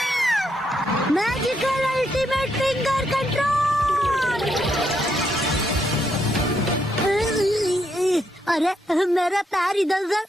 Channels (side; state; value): both; normal; correlation 0.78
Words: Magical ultimate finger control. अरे मेरा पैर इधर उधर